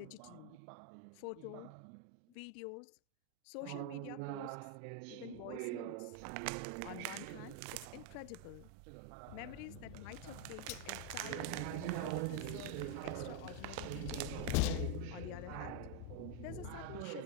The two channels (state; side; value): different; both; correlation 0.00